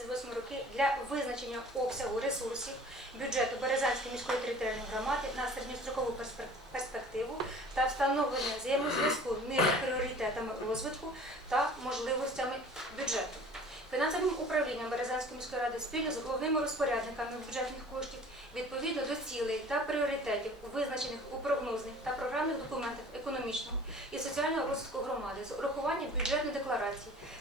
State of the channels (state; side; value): normal; both; correlation 0.47